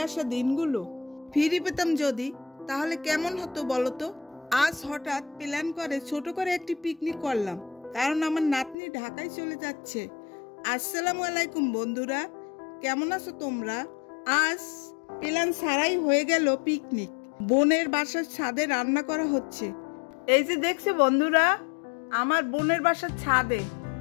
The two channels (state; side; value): drops out; right; at 8.8 s